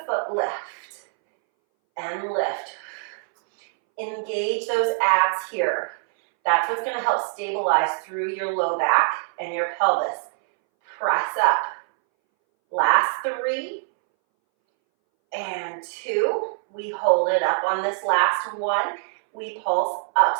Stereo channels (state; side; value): silent; left; 61 dB below the other